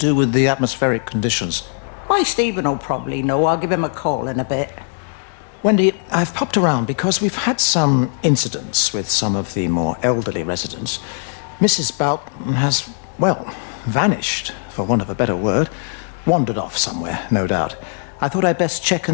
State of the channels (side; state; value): right; silent; digital silence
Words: with the atmospheric conditions. Why, Stephen will probably know. I'll give him a call in a bit. Wendy, I've popped around because we've had some incidents with some of the more elderly residents. Mrs. Bout has, well, vanished, for want of a better word. Wandered off somewhere, no doubt. I thought I'd best check